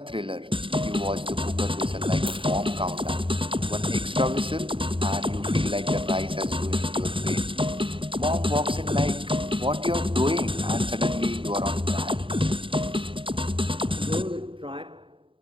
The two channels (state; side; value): late; left; 0.25 ms